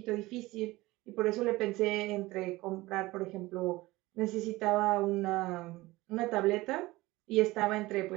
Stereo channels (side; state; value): left; quieter; 19.7 dB